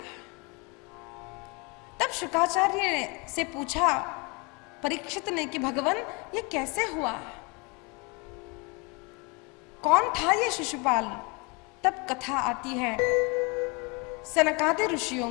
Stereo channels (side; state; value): right; quieter; 29.6 dB